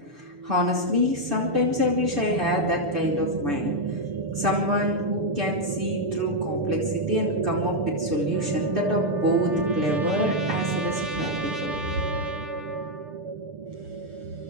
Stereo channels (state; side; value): late; left; 6.8 ms